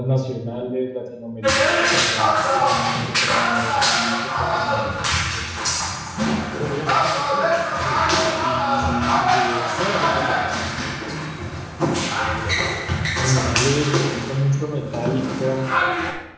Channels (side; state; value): both; identical; correlation 1.00